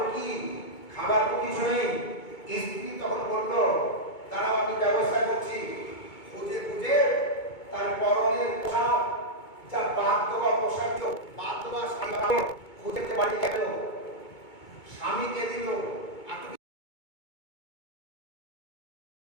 কি? খাবার তো কিছু নেই। স্ত্রী তখন বলল দাঁড়াও আমি ব্যবস্থা করছি। খুঁজে খুঁজে তার পরনের পোশাক, যা বাদ দেওয়া পোশাক, বাদ দেওয়া শাড়ি খুঁজে বাড়ি গেল, স্বামীকে দিল।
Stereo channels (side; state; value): right; late; 2.2 ms